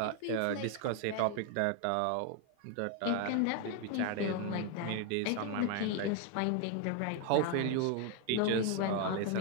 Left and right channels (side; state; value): both; different; correlation 0.01